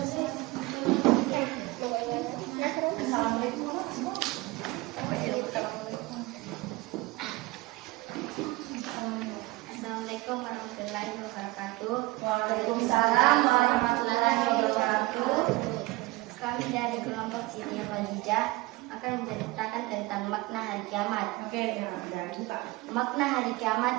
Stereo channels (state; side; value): quieter; left; 21.4 dB